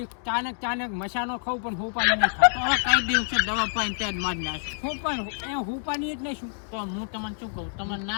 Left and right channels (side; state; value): right; silent; digital silence